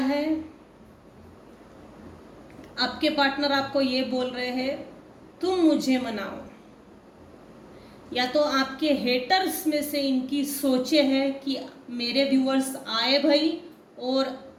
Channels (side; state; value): both; identical; correlation 1.00